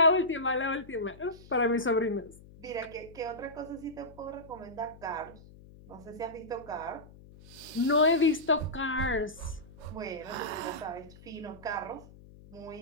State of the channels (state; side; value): noise; left; hum, 20 dB below the sound